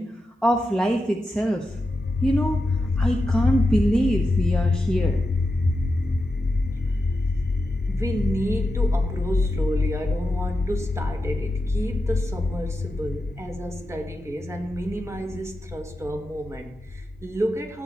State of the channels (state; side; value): normal; both; correlation 0.89